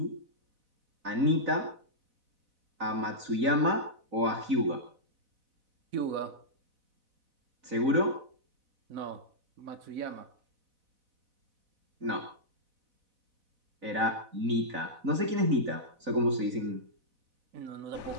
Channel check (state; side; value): late; left; 3.9 ms